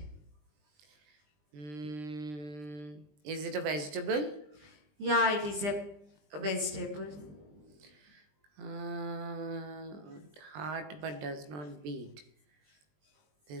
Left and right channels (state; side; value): late; left; 20 ms